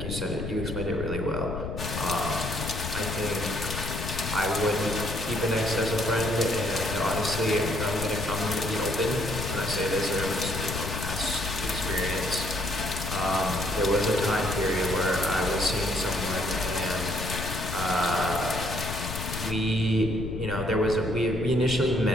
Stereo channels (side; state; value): left; noise; rumble, 5 dB below the sound